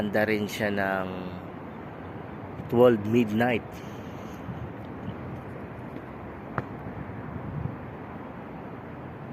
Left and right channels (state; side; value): identical; both; correlation 1.00